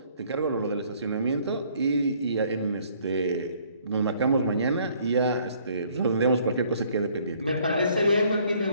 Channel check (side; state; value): both; inverted; correlation -0.62